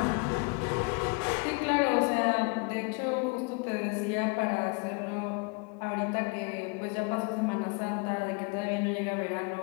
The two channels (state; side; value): quieter; right; 31.1 dB